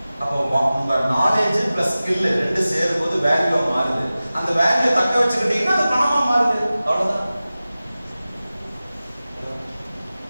அப்போ உங்க நாலேஜ் பிளஸ் ஸ்கில் ரெண்டு சேரும் போது வேல்யூ மாறுது. அந்த வேல்யூ தக்க வச்சுக்கிட்டீங்கன்னா அது பணமா மாறுது. அவ்வளவுதான்.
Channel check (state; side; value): inverted; both; correlation -0.96